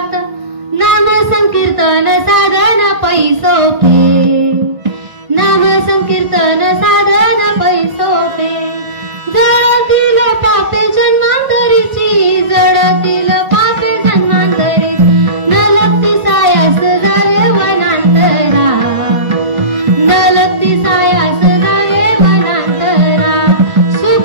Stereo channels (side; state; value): left; late; 1.5 ms